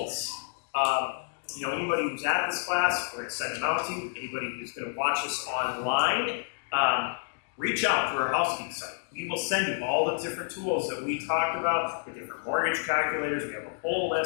anybody who's at this class, we're going to send them out to you. Anybody who's going to watch us online, reach out through our House Geeks site. We will send you all the different tools that we talked about, the different mortgage calculators. We have a whole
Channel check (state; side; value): silent; right; digital silence